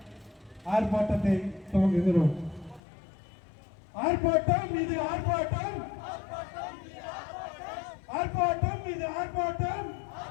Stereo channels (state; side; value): drops out; right; at 2.8 s